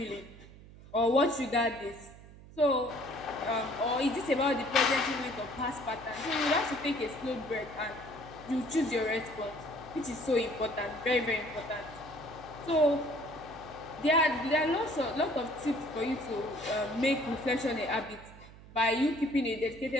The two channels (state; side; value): noise; right; hum, 19 dB below the sound